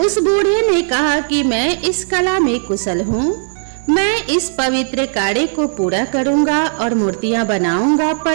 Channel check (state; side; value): silent; left; digital silence